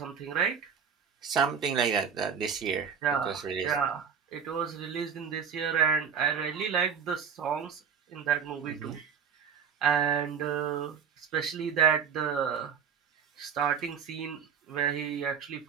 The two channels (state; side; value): quieter; left; 7.2 dB